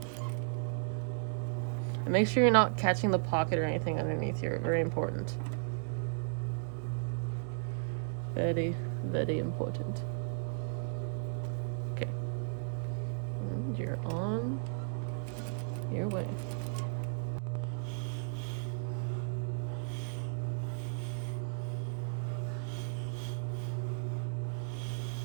And make sure you're not catching the pocket or anything underneath here. Very important. Very, very important. Okay. And you're on your way.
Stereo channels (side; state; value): left; silent; digital silence